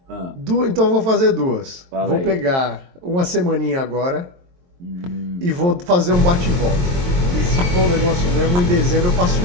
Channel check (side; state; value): left; late; 23 ms